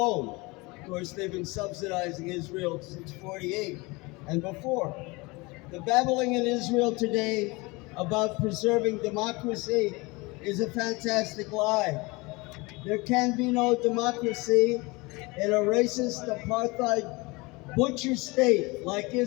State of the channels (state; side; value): quieter; right; 24.9 dB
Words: Of course, they've been subsidizing Israel since '48 and before. The babbling in Israel today about preserving democracy is a fantastic lie. There can be no democracy in a racist, apartheid, butcher state like